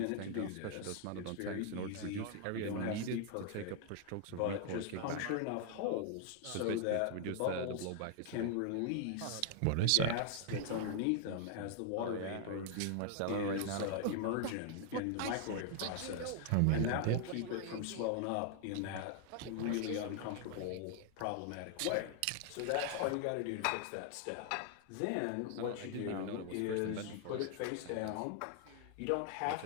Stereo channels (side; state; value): both; different; correlation 0.00